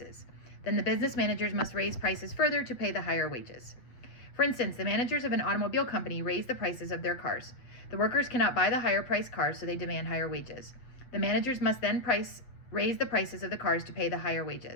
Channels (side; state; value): right; late; 8.2 ms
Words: Then the business managers must raise prices further to pay the higher wages. For instance, the managers of an automobile company raise the prices of their cars. The workers cannot buy the higher priced cars, so they demand higher wages. The managers must then raise the prices of the cars to pay the higher